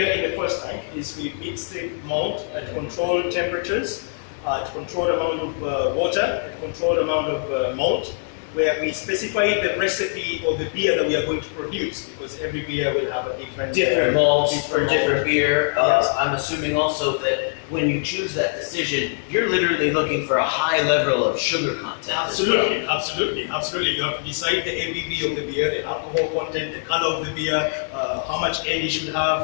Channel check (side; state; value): right; silent; digital silence